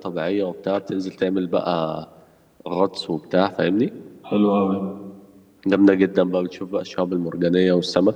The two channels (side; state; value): both; identical; correlation 1.00